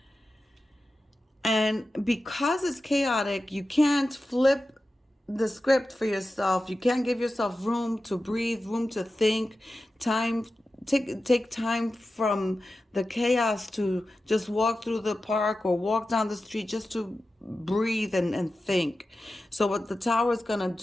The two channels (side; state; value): both; normal; correlation 0.93